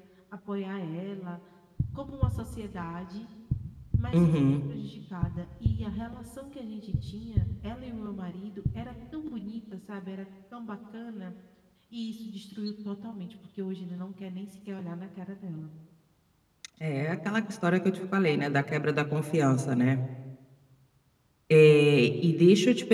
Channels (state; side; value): identical; both; correlation 1.00